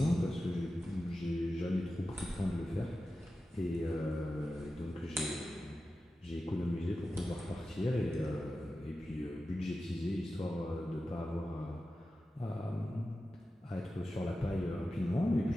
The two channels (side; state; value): both; normal; correlation 0.93